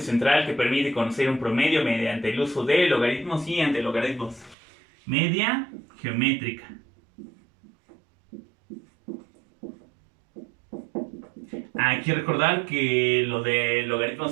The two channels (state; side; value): drops out; left; at 4.5 s